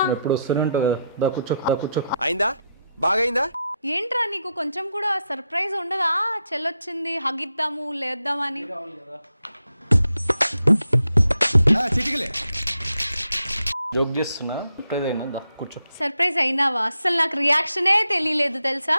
ఎప్పుడు వస్తూనే ఉంటుంది. దా కూర్చో. అయిందా? బాగైందా? ఏంట్రా నీకు కొంచెం కూడా సర్ప్రైజ్ ఉండదా? చెల్లొచ్చింది, హగిద్దాము లేద్దామని. చిటికలే జోక్ చేస్తున్నా. సర్ప్రైజ్ అయినా? దా కూర్చో. సర్ప్రైజ్ అయినావా? అస్సలు నాకు రియాక్షనే తెలియలేదు తెలుసా.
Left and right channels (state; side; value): inverted; both; correlation -0.83